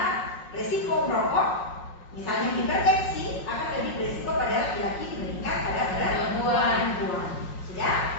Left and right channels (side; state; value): right; late; 5.5 ms